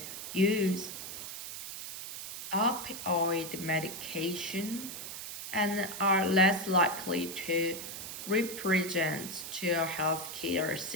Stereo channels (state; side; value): noise; right; hiss, 8 dB below the sound